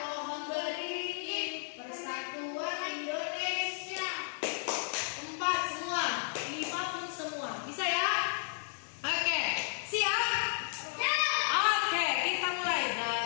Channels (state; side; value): silent; right; digital silence